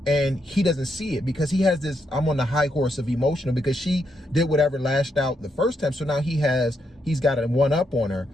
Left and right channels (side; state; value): both; normal; correlation 0.80